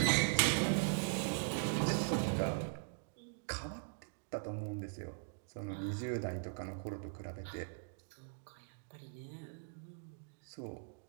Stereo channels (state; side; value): silent; left; digital silence